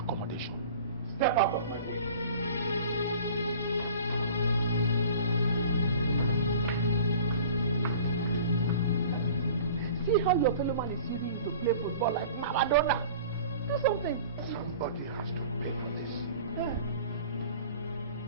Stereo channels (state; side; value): inverted; both; correlation -0.44